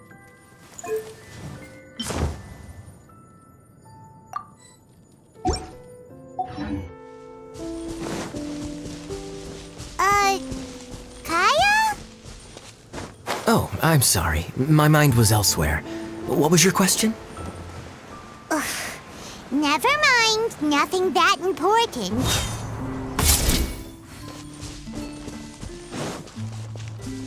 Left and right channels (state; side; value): identical; both; correlation 1.00